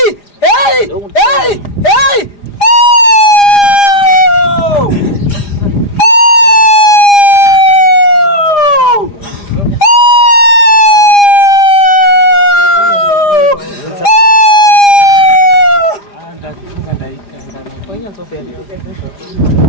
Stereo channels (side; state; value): right; late; 4.9 ms